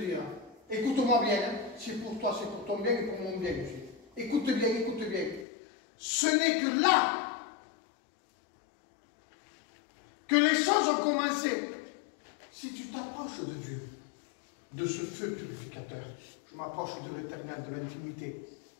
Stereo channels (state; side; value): drops out; right; at 5.5 s